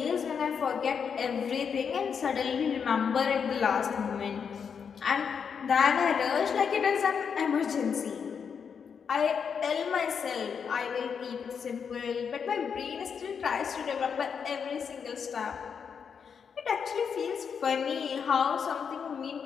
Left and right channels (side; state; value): right; quieter; 6.7 dB